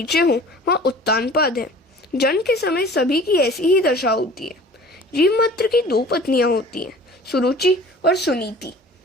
हों वहाँ उत्तानपाद है। जन्म के समय सभी की ऐसी ही दशा होती है। जीव मात्र की 2 पत्नियां होती हैं, सुरुचि और सुनीति।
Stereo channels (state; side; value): normal; both; correlation 0.45